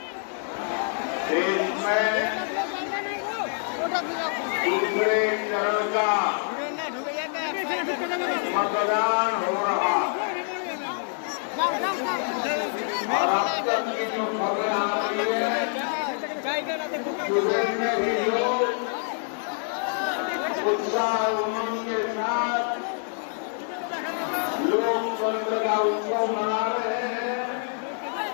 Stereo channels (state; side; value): silent; right; 61 dB below the other